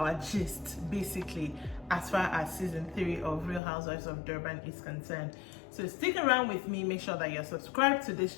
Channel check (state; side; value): drops out; right; at 3.6 s